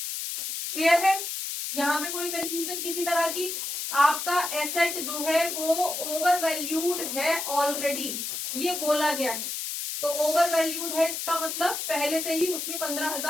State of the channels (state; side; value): noise; left; hiss, 4 dB below the sound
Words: है? यहाँ पे कोई कंफ्यूजन किसी तरह की? आपका एसेट जो है वो ओवर वैल्यूड है ऑलरेडी, ये बोला गया है। तो ओवर वैल्यूड है का मतलब पहले से ही उसमें